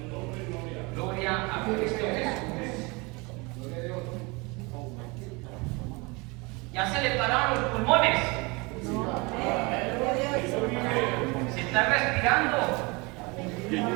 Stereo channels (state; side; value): quieter; left; 27.0 dB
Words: Gloria a Cristo Jesús. Ya se le pararon los pulmones. Se está respirando.